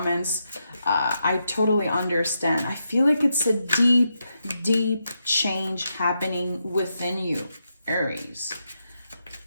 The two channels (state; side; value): inverted; both; correlation -0.84